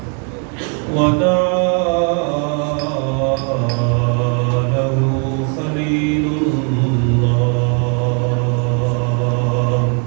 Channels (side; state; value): left; quieter; 38.1 dB